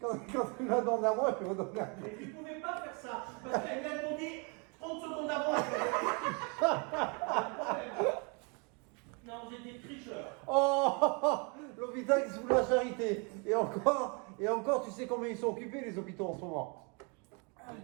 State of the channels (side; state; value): left; quieter; 33.9 dB